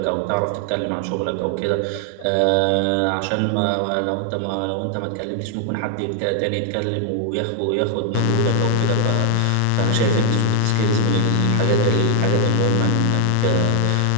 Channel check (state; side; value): different; both; correlation 0.00